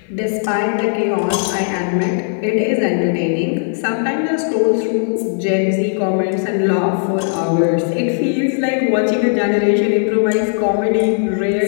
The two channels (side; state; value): right; silent; 55 dB below the other